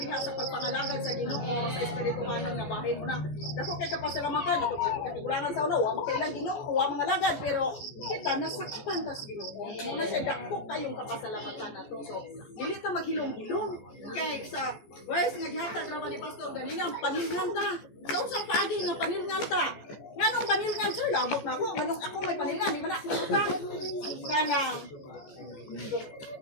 sa pagpangalagad sa Ginoo sa espirituhanong nga bahin mo na. Dako kay kapasalamatan ato katigulangan sa ulo, wa makailang Ginoo, wa mga lagad pero kita nasaktan ta sa Ginoo. Muna siya dako kayong kapasalamatan nato. So dili ta maghilom-hilom kay sa verse nga gihatag ra ni Pastor ganina panilngan ta. Sa unsang paagi nga panilngan ta. Nganong panilngan sir labot na ako, nganong ako may panilngan, di man ako utang. Kanang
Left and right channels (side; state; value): right; late; 14 ms